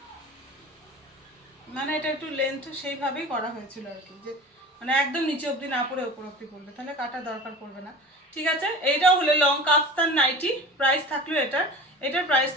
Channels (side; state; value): both; normal; correlation 0.36